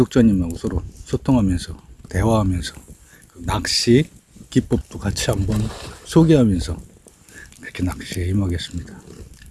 서로 소통하면서 대화하면서 낚시 기법도 같이 한번 소개하면서 그렇게 낚시에 임하겠습니다.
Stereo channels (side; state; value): both; identical; correlation 1.00